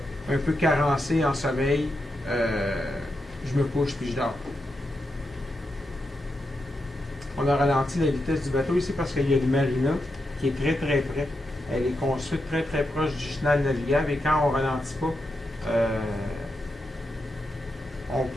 peu carencé en sommeil, je me couche puis je dors. On a ralenti la vitesse du bateau ici parce qu'il y a une marina qui est très très près. Elle est construite très très proche du chenal navigable et quand on ralentit pas,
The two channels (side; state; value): both; normal; correlation 0.86